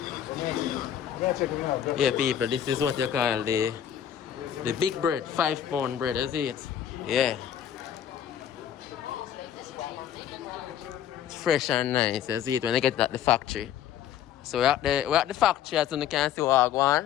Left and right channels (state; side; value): quieter; right; 10.0 dB